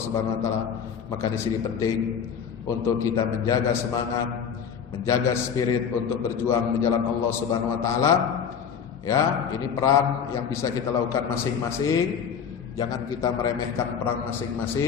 Subhanahu wa taala, maka di sini penting untuk kita menjaga semangat, menjaga spirit untuk berjuang di jalan Allah Subhanahu wa taala. Ya, ini peran yang bisa kita lakukan masing-masing. Jangan kita meremehkan peran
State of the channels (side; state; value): right; quieter; 7.3 dB